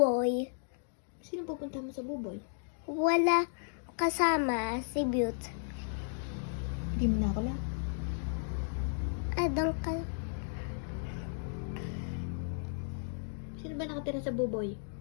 Sino pupunta mo sa buboy? Wala kasama si Beaut. Hindi mo na ako lang. Doon ka. Sino ba nakatira sa buboy?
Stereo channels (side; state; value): right; silent; digital silence